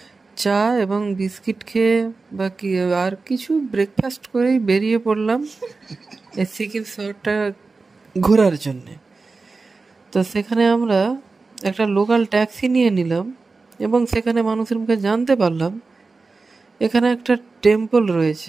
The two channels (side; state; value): left; quieter; 4.0 dB